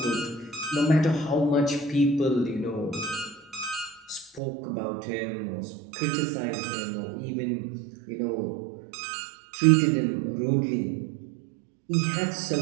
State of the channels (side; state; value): left; drops out; at 4.4 s